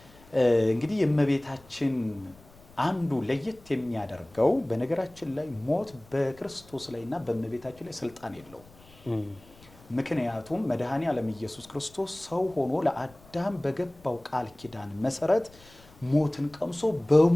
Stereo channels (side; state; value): left; noise; rumble, 25 dB below the sound